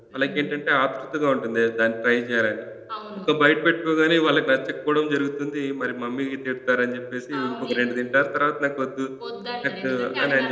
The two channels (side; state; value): both; identical; correlation 1.00